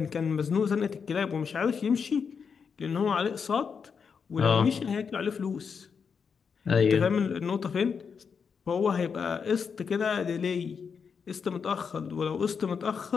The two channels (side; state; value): right; quieter; 6.2 dB